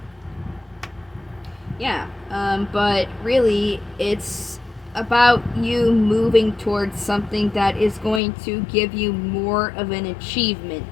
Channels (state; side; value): drops out; right; at 8.2 s